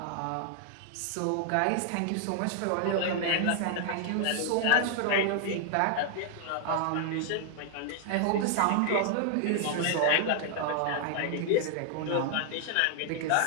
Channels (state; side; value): different; both; correlation 0.00